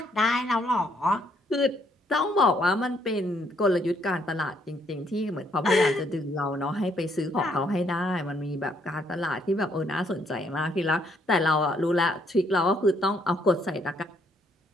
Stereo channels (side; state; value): both; normal; correlation 0.70